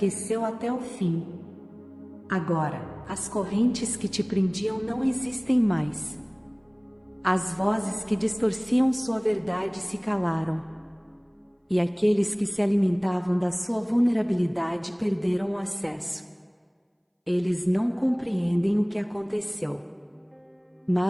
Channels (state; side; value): identical; both; correlation 1.00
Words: até o fim. Agora, as correntes que te prendiam não existem mais. As vozes que distorciam sua verdade se calaram. E aqueles que se alimentavam da sua vulnerabilidade perderam o acesso. Eles não compreendem o que aconteceu.